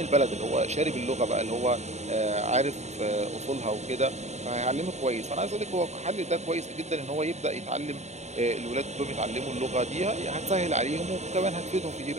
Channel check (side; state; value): left; late; 0.32 ms